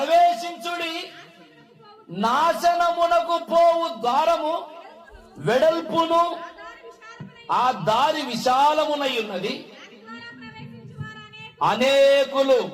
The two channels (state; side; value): identical; both; correlation 1.00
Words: నాశనమునకు పోవు ద్వారము వెడల్పును ఆ దారి విశాలమునై ఉన్నది, అనేకులు